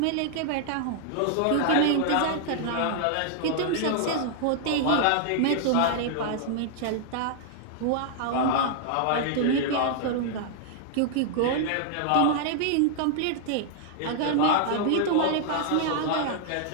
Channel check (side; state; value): both; different; correlation -0.01